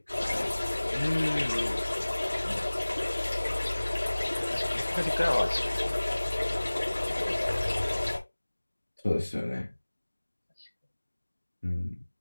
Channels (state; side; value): inverted; both; correlation -1.00